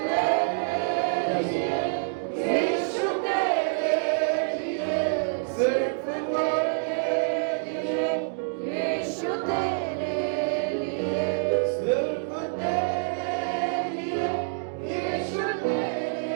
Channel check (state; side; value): silent; left; digital silence